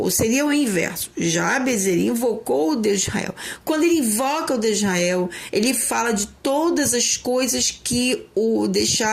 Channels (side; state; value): both; identical; correlation 1.00